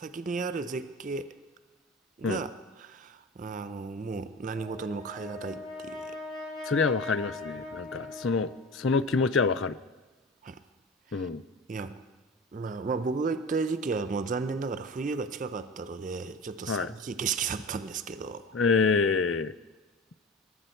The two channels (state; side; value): normal; both; correlation 0.33